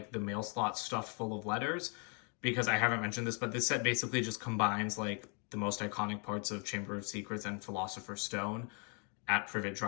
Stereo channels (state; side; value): quieter; right; 37.2 dB